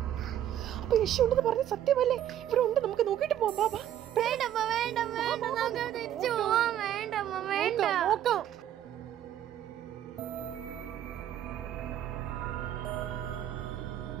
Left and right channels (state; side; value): quieter; left; 11.2 dB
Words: അപ്പൊ യക്ഷി ഉണ്ടെന്ന് പറഞ്ഞ സത്യമല്ലേ? ഇവിടെ ഉണ്ട്, നമുക്ക് നോക്കിട്ട് പോവാം. നോക്കാം.